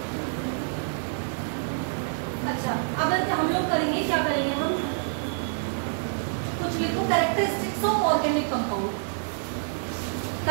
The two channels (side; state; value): left; silent; 60 dB below the other